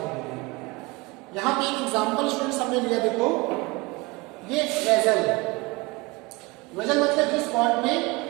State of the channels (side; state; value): left; quieter; 24.7 dB